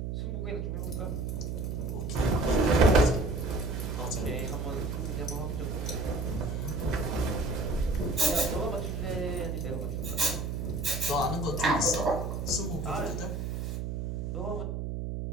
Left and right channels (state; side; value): noise; right; hum, 3 dB below the sound